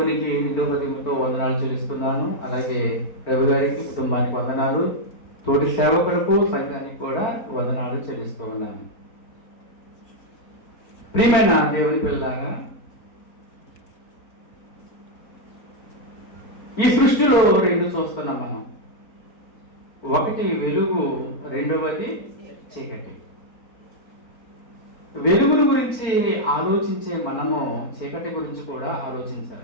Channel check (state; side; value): late; right; 4.4 ms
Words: నిండు హృదయంతో వందనాలు చెల్లిస్తున్నాను. అలాగే రవి గారికి, కుటుంబానికి వందనాలు, తోటి సేవకులకు, సంఘానికి కూడా వందనాలు చెల్లిస్తూ ఉన్నాను. ప్రియమైన దేవుని పిల్లలాగా, ఈ సృష్టిలో రెండు చూస్తున్నాం మనం. ఒకటి వెలుగు, రెండవది చీకటి. వెలుగుల గురించి ఆలోచించే మనము చీకటి గురించి కూడా